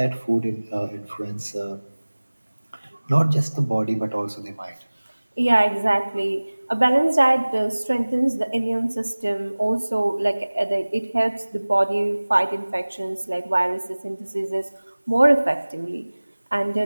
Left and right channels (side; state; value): both; inverted; correlation -1.00